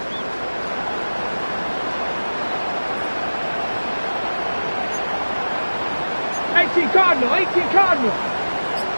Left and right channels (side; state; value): both; inverted; correlation -1.00